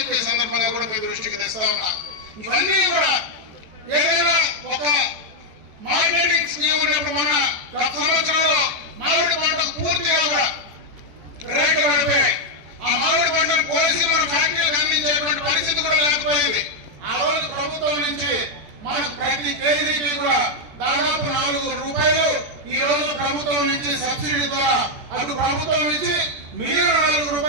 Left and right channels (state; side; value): late; left; 14 ms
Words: సందర్భంగా కూడా మీ దృష్టికి తెస్తా ఉన్నా. ఇవన్నీ కూడా ఏదైనా ఒక మార్కెటింగ్ స్కీమ్ ఉన్నప్పుడు మన గత సంవత్సరంలో మామిడి పంటకు పూర్తిగా కూడా రేట్లు పడిపోయాయి. ఆ మామిడి పంటను కోసి మన ఫ్యాక్టరీలకు అందించేటువంటి పరిస్థితి కూడా లేకపోయింది. ఆ రోజు ప్రభుత్వం నుంచి మనకు ప్రతి కేజీకి కూడా దాదాపు 4 రూపాయలు ఈ రోజు ప్రభుత్వం నుంచి సబ్సిడీ ద్వారా అటు ప్రభుత్వం నుంచి మిగిలిన 4